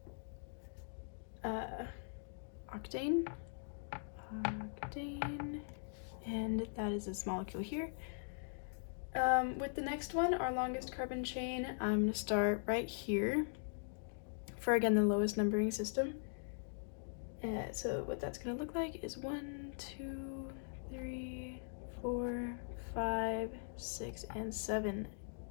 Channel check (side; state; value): right; silent; digital silence